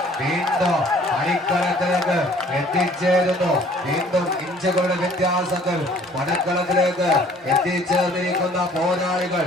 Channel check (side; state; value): both; normal; correlation 0.55